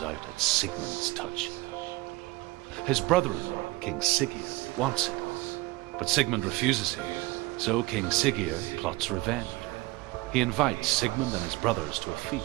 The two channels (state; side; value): quieter; left; 20.7 dB